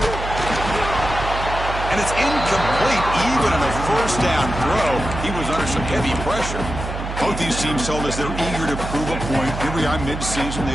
And it's incomplete even on a first down throw. He was under some heavy pressure. Both these teams told us they're eager to prove a point. Here we are mid-season. They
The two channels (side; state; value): right; noise; hum, 6 dB below the sound